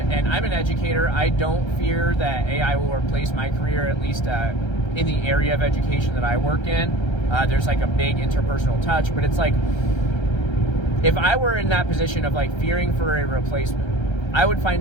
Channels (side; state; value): right; late; 1.3 ms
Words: and I'm an educator, I don't fear that AI will replace my career, at least in the area of education that I work in. There's like a big interpersonal touch, but it's like, if I were in that position of like fearing for a replacement, I would